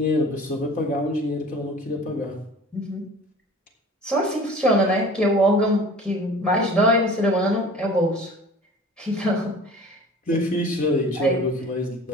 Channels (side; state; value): both; normal; correlation 0.43